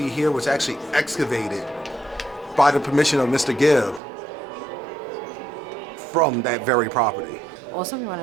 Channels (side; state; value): left; drops out; at 4.0 s